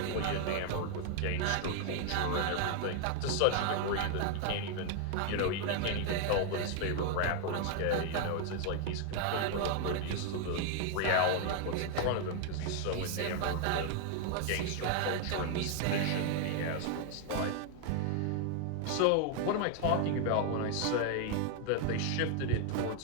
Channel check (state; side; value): different; both; correlation 0.00